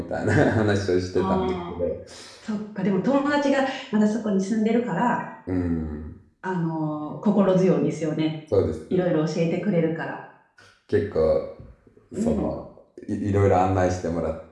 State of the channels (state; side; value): identical; both; correlation 1.00